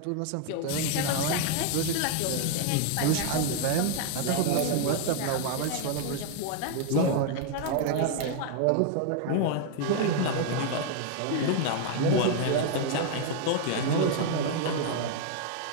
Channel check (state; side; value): different; both; correlation 0.00